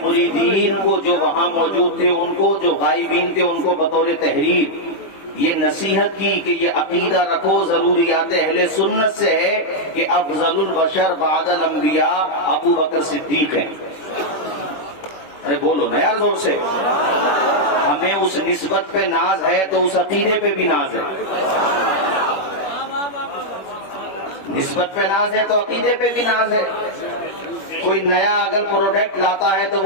مریدین کو جو وہاں موجود تھے، ان کو جو غائبین تھے، ان کو بطور تحریر یہ نصیحت کی کہ یہ عقیدہ رکھو، ضروریات اہل سنت سے ہے کہ افضل البشر بعد الانبیاء ابو بکر صدیق ہیں۔ ارے بولو نا یار زور سے۔ ہمیں اس نسبت پہ ناز ہے تو اس عقیدے پہ بھی ناز ہے۔ نسبت پہ ناز ہے تو عقیدے پہ بھی ناز ہے۔ کوئی نیا اگر پروڈکٹ لاتا ہے تو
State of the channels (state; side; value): late; right; 21 ms